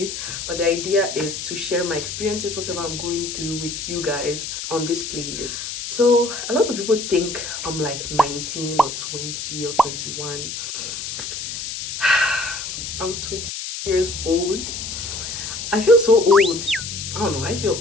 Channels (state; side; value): noise; left; hiss, 6 dB below the sound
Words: but the idea is to share my experiences, whatever I'm going through, with you guys on this playlist. So a lot of people think I'm like 19 or 20 or 21. I'm 20 years old. I feel so old. I don't know, I feel